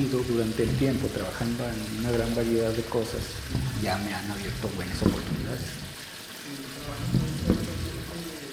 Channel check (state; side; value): identical; both; correlation 1.00